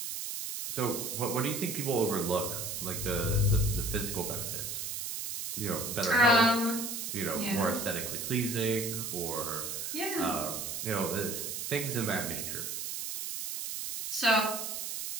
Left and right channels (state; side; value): noise; right; hiss, 4 dB below the sound